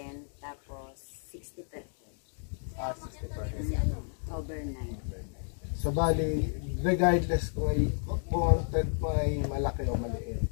tapos 60%. 60 per head. Overnight. So bali, regardless kung ang tent mo ay malaki o maliit,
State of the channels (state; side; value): silent; right; digital silence